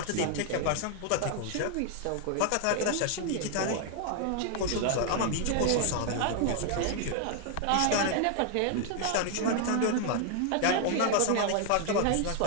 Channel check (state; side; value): different; both; correlation 0.00